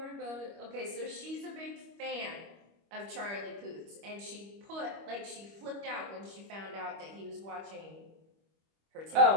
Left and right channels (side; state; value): left; late; 25 ms